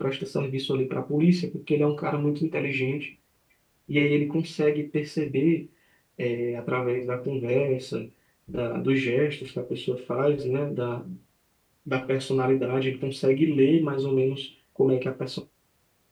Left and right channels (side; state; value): both; identical; correlation 1.00